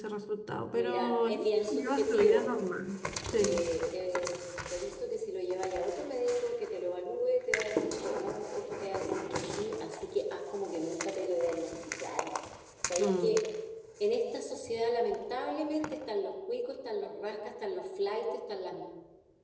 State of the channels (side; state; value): both; identical; correlation 1.00